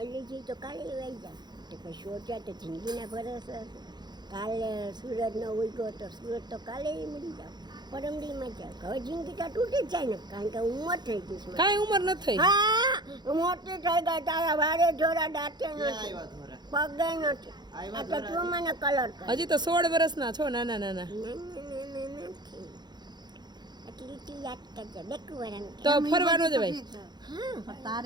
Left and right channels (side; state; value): left; late; 0.21 ms